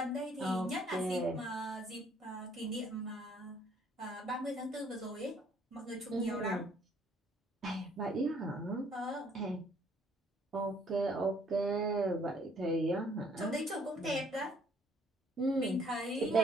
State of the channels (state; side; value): normal; both; correlation 0.62